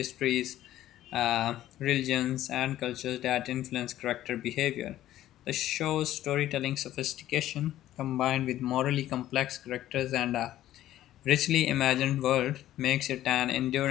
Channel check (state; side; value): quieter; right; 13.5 dB